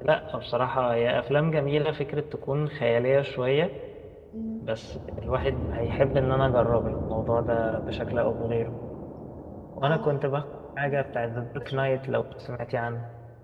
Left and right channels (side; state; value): both; identical; correlation 1.00